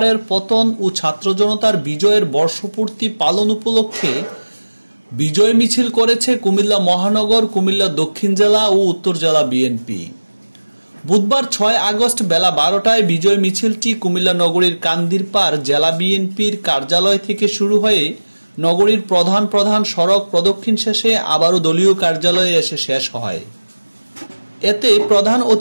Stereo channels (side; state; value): both; inverted; correlation -1.00